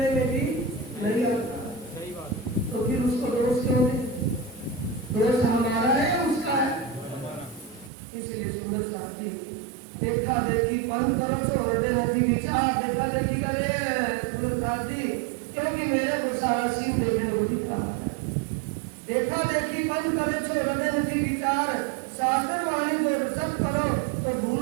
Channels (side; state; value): left; drops out; at 7.9 s